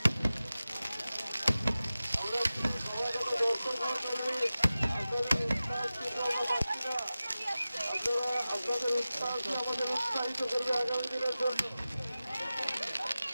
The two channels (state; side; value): inverted; both; correlation -0.95